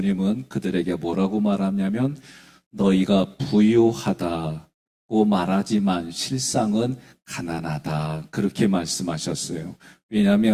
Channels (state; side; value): identical; both; correlation 1.00